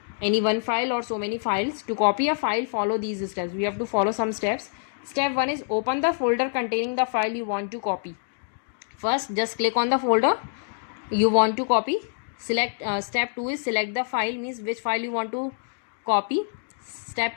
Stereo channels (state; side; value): silent; right; digital silence